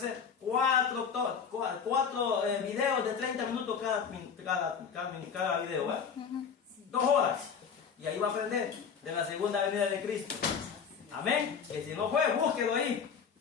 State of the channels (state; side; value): quieter; right; 6.6 dB